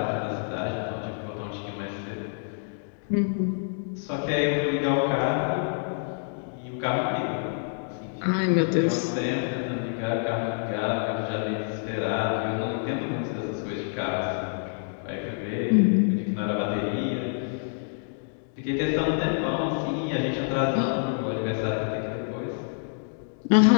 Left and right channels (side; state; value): right; silent; digital silence